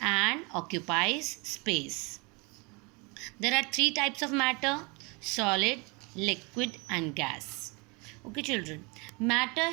and occupies space. There are three types of matter: solid, liquid, and gas. Okay, children. Matter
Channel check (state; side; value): quieter; left; 29.3 dB